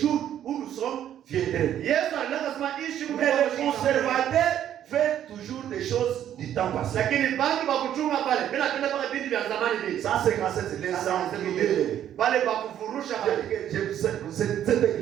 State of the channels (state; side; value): quieter; left; 10.7 dB